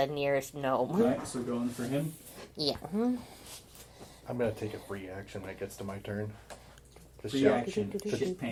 nearest gnome. Alright, so going for him. Yeah. I'm gonna take a free action when it gets to my turn. To Free shout, action. Shit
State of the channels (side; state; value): both; identical; correlation 1.00